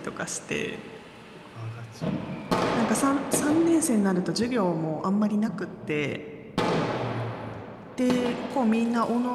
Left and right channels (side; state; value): both; identical; correlation 1.00